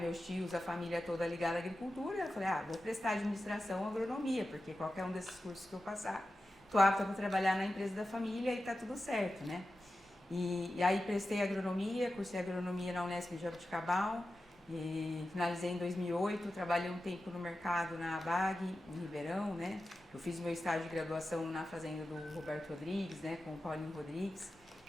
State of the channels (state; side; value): normal; both; correlation 0.92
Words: tios, a família toda ligada à agricultura, eu falei, vou prestar administração ou agronomia, porque qualquer um desses cursos que eu passar, tô apta para trabalhar na empresa da família e tá tudo certo, né? E aí prestei agronomia, cursei agronomia na Unesp de Jaboticabal, e finalizei em 2008, trabalhei um tempo no mercado na ABAG, em Ribeirão, né? Eu fiz meu estágio de graduação na fazenda do Roberto Rodrigues, né, com o Paulinho Rodrigues.